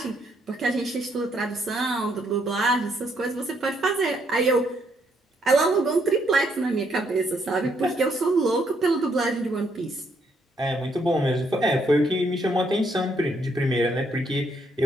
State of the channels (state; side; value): normal; both; correlation 0.72